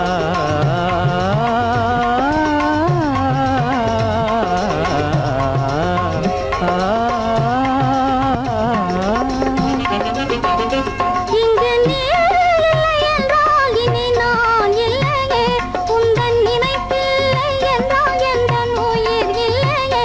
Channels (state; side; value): identical; both; correlation 1.00